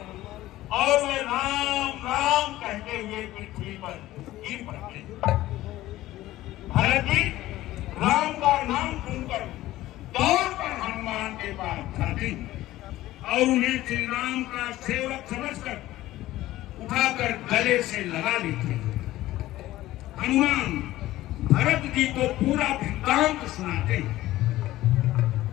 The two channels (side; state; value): right; quieter; 15.8 dB